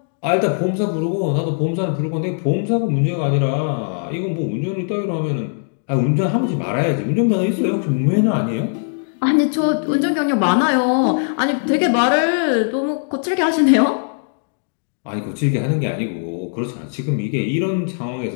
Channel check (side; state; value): right; silent; digital silence